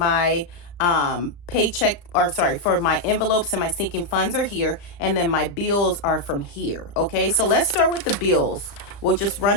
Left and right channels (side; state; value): right; late; 34 ms